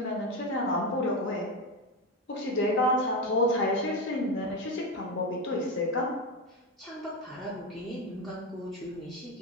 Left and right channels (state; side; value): normal; both; correlation 0.15